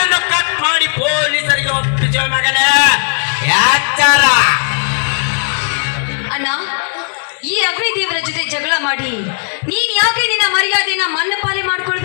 ಕಟ್ ಮಾಡಿ ಪೊಲೀಸರಿಗೆ ಒಪ್ಪಿಸುವ ಮಗನೇ. ಎಚ್ಚರ. ಅಣ್ಣ, ಈ ಅಗ್ನಿದೇವರ ಜೊತೆ ಜಗಳ ಮಾಡಿ ನೀನ್ ಯಾಕೆ ನಿನ್ನ ಮರ್ಯಾದೆನ ಮನ್ನಪಾಲೆ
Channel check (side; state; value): right; silent; digital silence